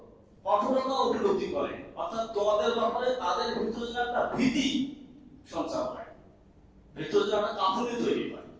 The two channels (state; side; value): identical; both; correlation 1.00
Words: কঠোরতা উপলব্ধি করে, অর্থাৎ তোমাদের ব্যাপারে তাদের ভিতরে যেন একটা ভীতি সঞ্চার হয়, ভিতরে যেন একটা কাঁপুনি তৈরি হয়।